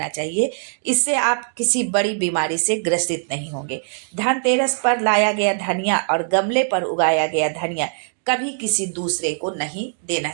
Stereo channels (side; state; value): left; silent; 58 dB below the other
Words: चाहिए। इससे आप किसी बड़ी बीमारी से ग्रसित नहीं होंगे। धनतेरस पर लाया गया धनिया और गमले पर उगाया गया धनिया कभी किसी दूसरे को नहीं देना